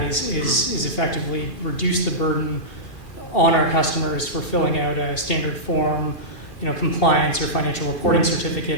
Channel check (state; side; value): late; right; 2.4 ms